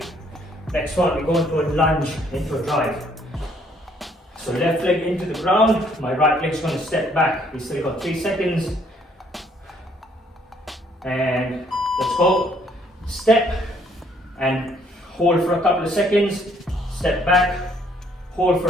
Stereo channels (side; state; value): both; normal; correlation 0.65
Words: Next one, we go into a lunge, into a drive. So left leg into the ground, my right leg's going to step back. We still got 3 seconds. And let's go. Step and hold for a couple of seconds. Step back, hold for